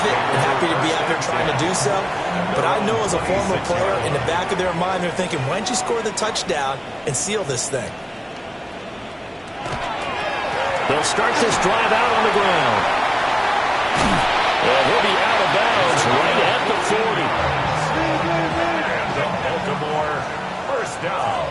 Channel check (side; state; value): both; identical; correlation 1.00